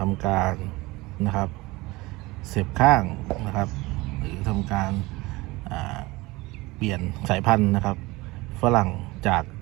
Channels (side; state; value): left; quieter; 21.7 dB